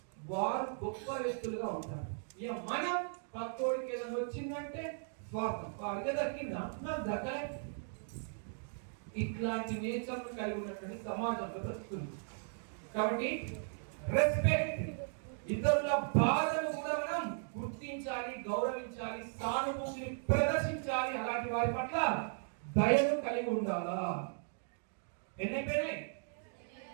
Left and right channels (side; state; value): left; silent; digital silence